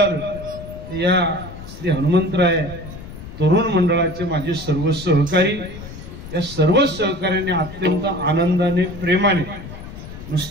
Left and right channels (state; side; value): noise; left; rumble, 13 dB below the sound